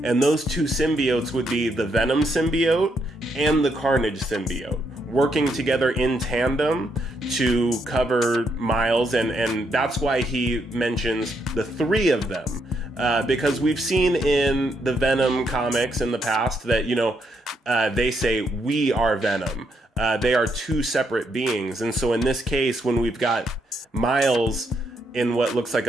And those two symbiotes would be the Venom symbiote and the Carnage symbiote, working together in tandem to cover Miles. And that's why he mentions the three of them. Because we've seen in the Venom comics in the past that, you know, they say, "We are Venom." They are two separate beings. And so in this case, when we've got Miles in what looks like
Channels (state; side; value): normal; both; correlation 0.77